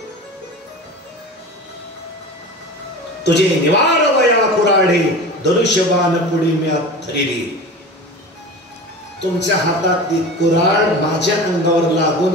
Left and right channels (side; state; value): both; normal; correlation 0.34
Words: तुझे निवार वया कुराडे, धनुष्यबाण पुढे मी धरिली. तुमच्या हातातली कुराड माझ्या अंगावर लागू